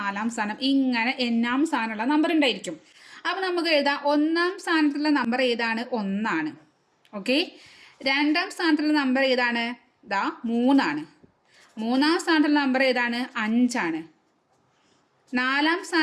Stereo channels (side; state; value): both; identical; correlation 1.00